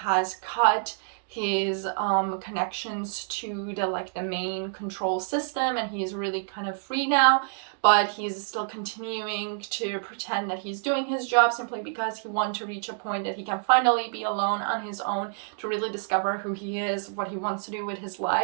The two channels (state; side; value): silent; left; digital silence